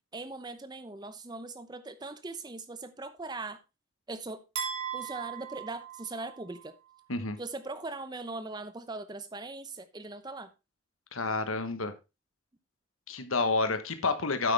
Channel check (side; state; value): both; normal; correlation -0.18